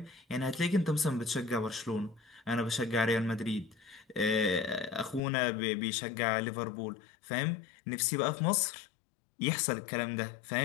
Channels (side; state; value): right; drops out; at 5.2 s